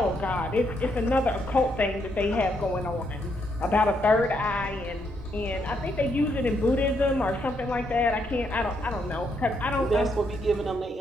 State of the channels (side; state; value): both; normal; correlation 0.76